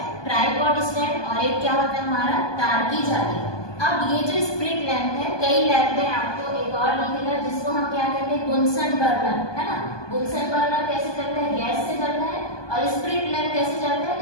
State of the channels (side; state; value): right; late; 1.2 ms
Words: ट्राइपॉड स्टैंड, और एक क्या होता है हमारा तार की जाली। अब ये जो स्प्रिट लैंप है, कई लैब में आपको एक और दिखेगा जिसको हम क्या कहते हैं, बुनसन बर्नर, है ना। बुनसन बर्नर कैसे चलता है, गैस से चलता है, और स्प्रिट लैंप कैसे चलता है,